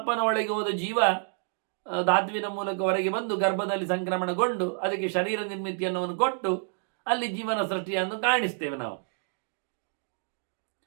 ಒಳಗೆ ಹೋದ ಜೀವ ಧಾತುವಿನ ಮೂಲಕ ಹೊರಗೆ ಬಂದು ಗರ್ಭದಲ್ಲಿ ಸಂಕ್ರಮಣಗೊಂಡು ಅದಕ್ಕೆ ಶರೀರ ನಿರ್ಮಿತಿಯನ್ನು ಕೊಟ್ಟು ಅಲ್ಲಿ ಜೀವನ ಸೃಷ್ಟಿಯನ್ನು ಕಾಣಿಸ್ತೇವೆ ನಾವು.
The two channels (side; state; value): left; silent; digital silence